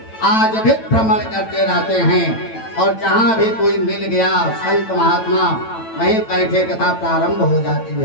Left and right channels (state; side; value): late; right; 9.0 ms